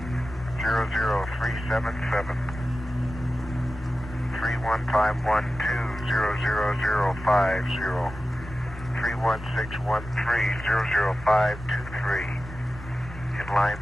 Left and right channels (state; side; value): normal; both; correlation 0.94